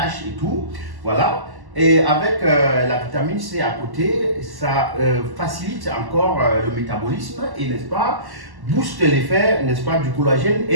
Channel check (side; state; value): left; late; 1.1 ms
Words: et tout. Voilà. Et avec la vitamine C à côté, ça facilite encore le métabolisme et, n'est-ce pas, booste l'effet, n'est-ce pas, du collagène